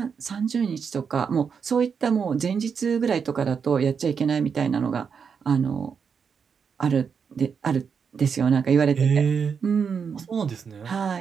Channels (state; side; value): quieter; left; 6.4 dB